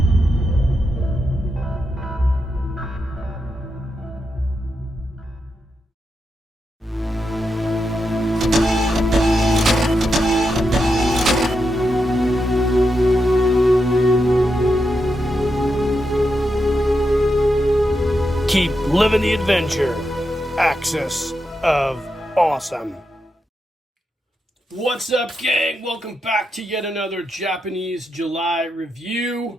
Keep living the adventure. Axis of Awesome. What's up, gang? Welcome back to yet another Japanese July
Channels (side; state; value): both; normal; correlation 0.85